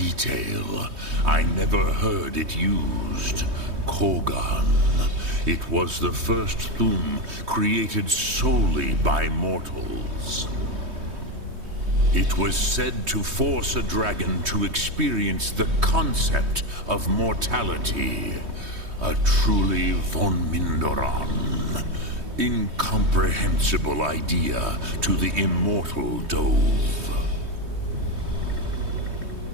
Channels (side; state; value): left; late; 3.2 ms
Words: I never heard it used. Kogan. It was the first Thum created solely by mortals. It was said to force a dragon to experience the concept of mortality. A truly von Mindoran. Incomprehensible idea to the immortal Dove.